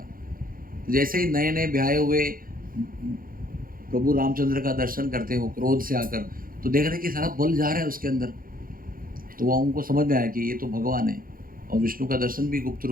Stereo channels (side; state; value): left; late; 0.41 ms